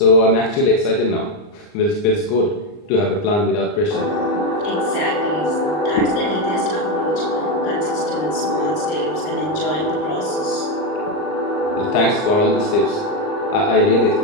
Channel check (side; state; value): right; late; 39 ms